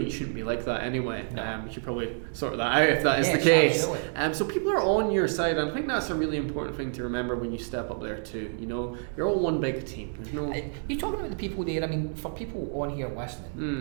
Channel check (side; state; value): left; silent; 59 dB below the other